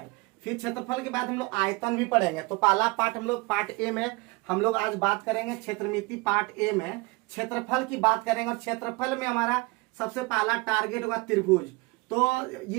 फिर क्षेत्रफल के बाद हम लोग आयतन भी पढ़ेंगे। तो पहला पार्ट हम लोग पार्ट ए में हम लोग आज बात करेंगे क्षेत्रमिति। पार्ट ए में क्षेत्रफल की बात करेंगे और क्षेत्रफल में हमारा सबसे पहला टारगेट होगा त्रिभुज। तो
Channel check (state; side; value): quieter; left; 25.8 dB